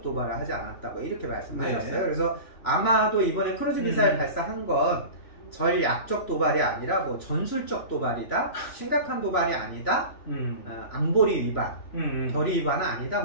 도발을 하지 않았다, 뭐 이렇게 말씀하셨어요. 그래서 아마도 이번에 크루즈 미사일 발사한 건 전략적 도발이 아니라 뭐 전술적 도발이다, 심각한 도발이 아니다, 안보리 위반, 결의 위반은 아니다,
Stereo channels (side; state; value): right; late; 3.0 ms